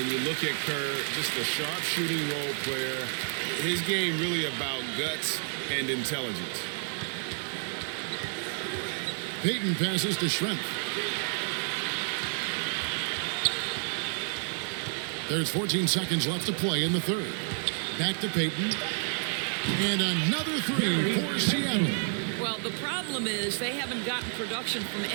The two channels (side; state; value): left; silent; 56 dB below the other